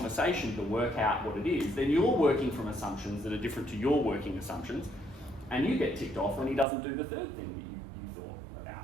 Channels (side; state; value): left; drops out; at 6.7 s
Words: to work out what it is, then you're working from assumptions that are different to your working assumptions, and you get ticked off when he doesn't do the 3rd thing that you thought about,